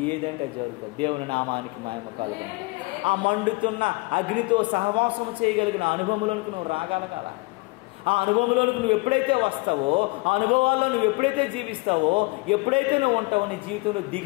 ఏదంటే జరుగుతుంది. దేవుని నామానికి మహిమ కలుగును. ఆ మండుతున్న అగ్నితో సహవాసం చేయగలిగిన అనుభవంలోనికి నువ్వు రాగలగాల. ఆ అనుభవంలోనికి నువ్వు ఎప్పుడైతే వస్తావో, ఆ అనుభవాల్లో నువ్వు ఎప్పుడైతే జీవిస్తావో, ఎప్పుడైతే నువ్వు ఉంటావో నీ జీవితంలో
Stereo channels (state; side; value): quieter; right; 26.4 dB